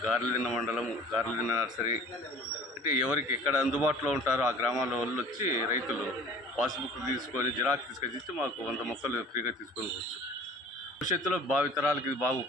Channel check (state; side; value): normal; both; correlation 0.46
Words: గార్లదిన్న మండలము, గార్లదిన్న నర్సరీ అంటే ఎవరికి ఎక్కడ అందుబాటులో ఉంటారో ఆ గ్రామాల వాళ్ళు వచ్చి రైతులు పాస్బుక్ తీసుకొని జిరాక్స్ తీసుకొచ్చి మాకు 100 మొక్కలు ఫ్రీగా తీసుకొని పోవచ్చు. భవిష్యత్తులో భావితరాలకి ఇది బాగా